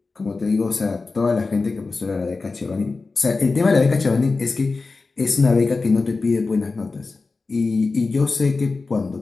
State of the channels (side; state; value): right; quieter; 3.9 dB